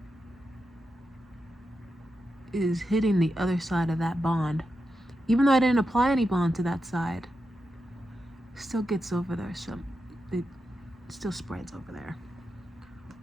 is hitting the other side of that bond. Even though I didn't apply any bond to that side, it still gets over there, so it still spreads over there.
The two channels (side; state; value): both; normal; correlation 0.88